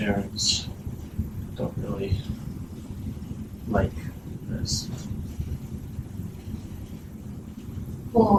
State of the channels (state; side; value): identical; both; correlation 1.00